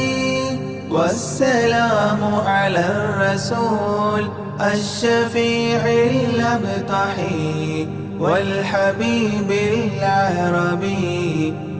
والسلام على الرسول الشفيع الأبطحي والحبيب العربي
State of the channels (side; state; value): both; identical; correlation 1.00